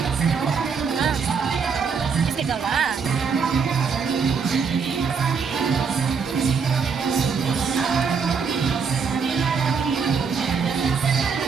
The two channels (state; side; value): quieter; left; 5.7 dB